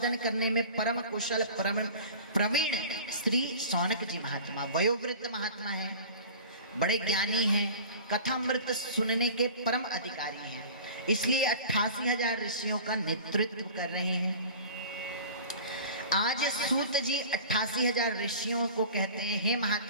करने में परम कुशल परम प्रवीण श्री सौनक जी महात्मा, वयोवृद्ध महात्मा है, बड़े ज्ञानी हैं, कथामृत सुनने के परम अधिकारी हैं, इसलिए 88,000 ऋषियों का नेतृत्व कर रहे हैं। आज सूत जी 88,000 ऋषियों को कहते हैं, हे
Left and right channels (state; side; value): inverted; both; correlation -0.40